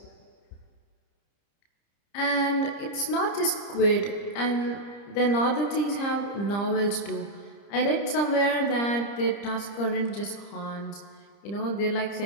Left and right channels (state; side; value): late; right; 30 ms